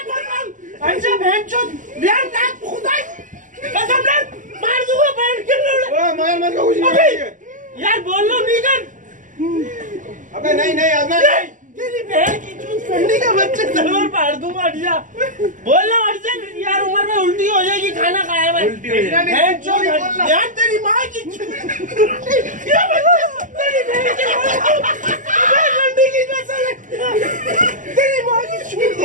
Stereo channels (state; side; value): late; left; 0.37 ms